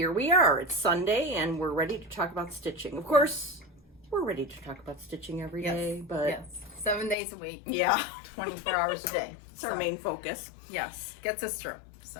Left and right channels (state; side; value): drops out; right; at 7.2 s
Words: we are. It's Sunday, and we're ready to talk about stitching. Of course, we're ready to talk about stitching every day, but... Yes, 7 days a week. Yeah. 24 hours a day. It's our main focus. Yes, gets us through.